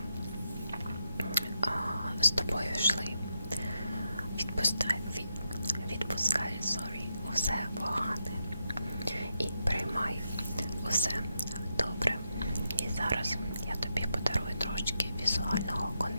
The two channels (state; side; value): inverted; both; correlation -0.83